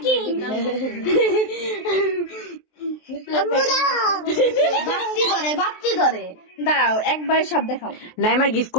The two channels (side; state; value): right; late; 23 ms